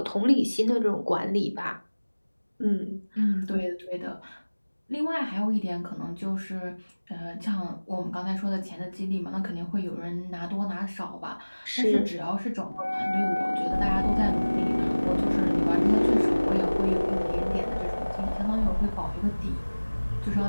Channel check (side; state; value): both; inverted; correlation -1.00